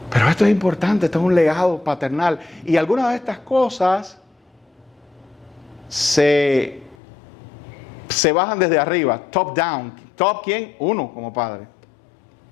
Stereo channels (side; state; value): right; drops out; at 7.0 s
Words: esto es importante, esto es un legado paternal. Y algunas de estas cosas se bajan desde arriba, top down. ¿Top quién? Uno como padre.